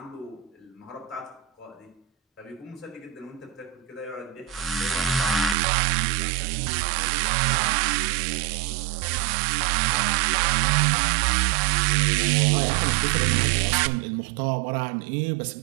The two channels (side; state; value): left; drops out; at 5.6 s